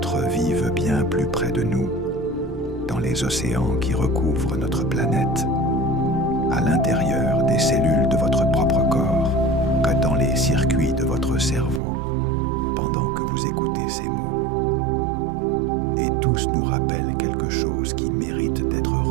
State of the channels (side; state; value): left; drops out; at 11.8 s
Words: vivent bien plus près de nous, dans les océans qui recouvrent notre planète, à l'intérieur des cellules de votre propre corps, que dans les circuits de votre cerveau, pendant que vous écoutez ces mots. Et tous nous rappellent quelque chose qui mérite d'être